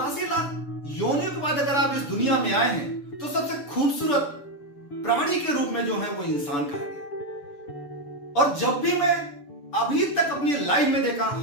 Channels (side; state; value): right; late; 7.0 ms